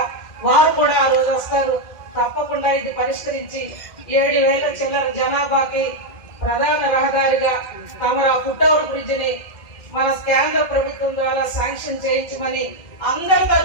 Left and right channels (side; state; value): right; late; 2.0 ms